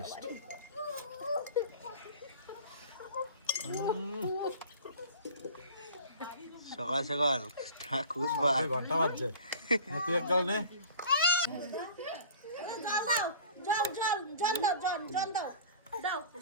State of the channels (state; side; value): inverted; both; correlation -0.43